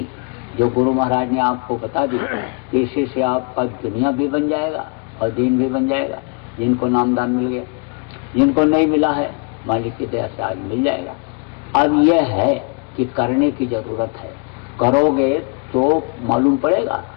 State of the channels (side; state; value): right; quieter; 33.4 dB